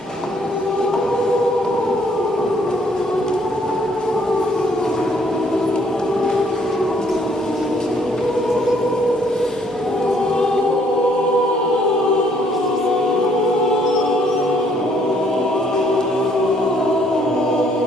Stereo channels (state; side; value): normal; both; correlation 0.65